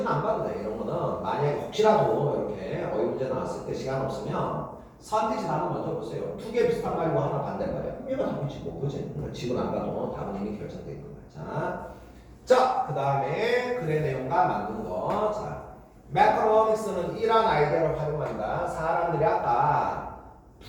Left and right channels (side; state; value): both; identical; correlation 1.00